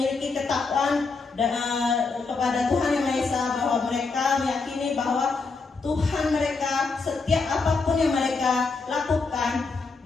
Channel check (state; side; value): quieter; right; 4.3 dB